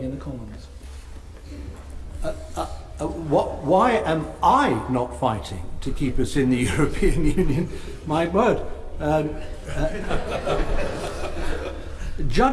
in the Commons? Why am I not fighting to keep us in the European Union? My word.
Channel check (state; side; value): identical; both; correlation 1.00